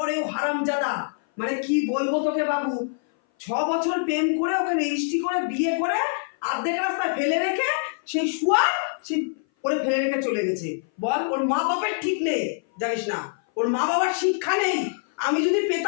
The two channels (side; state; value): right; silent; 58 dB below the other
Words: ও হারামজাদা, মানে কি বলবো তোকে বাবু। 6 বছর প্রেম করে ওকে রেজিস্ট্রি করে বিয়ে করে অর্ধেক রাস্তায় ফেলে রেখে সেই শুয়া সে করে ফেলে রেখে চলে গেছে। বল, ওর মা বাবার ঠিক নেই জানিস না, ওর মা বাবার শিক্ষা নেই। আমি যদি